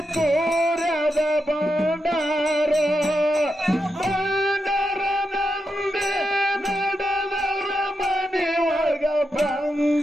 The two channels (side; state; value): both; normal; correlation 0.86